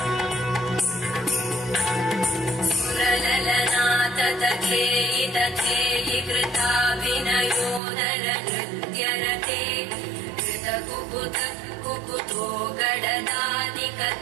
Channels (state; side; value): drops out; left; at 7.8 s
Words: तथेयि तथेयि कृताभिनयोदर नृत्यरते कृतकुकुत कुकुतो